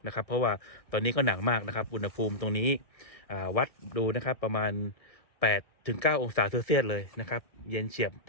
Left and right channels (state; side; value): late; right; 1.7 ms